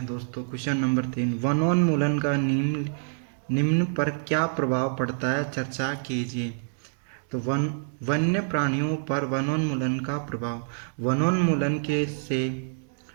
दोस्तों। क्वेश्चन नंबर 3, वनोन्मूलन का निम्न पर क्या प्रभाव पड़ता है, चर्चा कीजिए। तो वन्य प्राणियों पर वनोन्मूलन का प्रभाव।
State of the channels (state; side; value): silent; left; digital silence